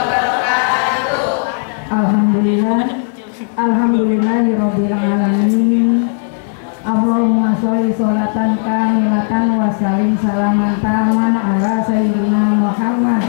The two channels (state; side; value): silent; right; 60 dB below the other